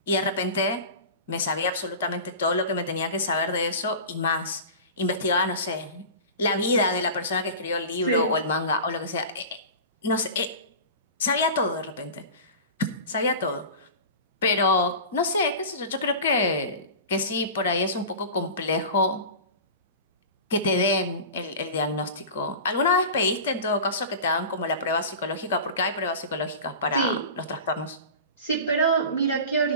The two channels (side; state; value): both; inverted; correlation -0.33